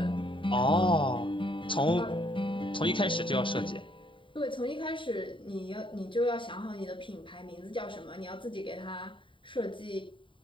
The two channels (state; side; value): late; right; 0.25 ms